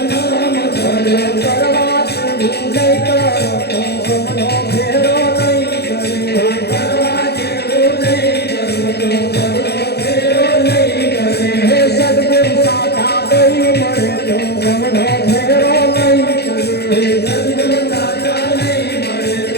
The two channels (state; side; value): late; right; 0.48 ms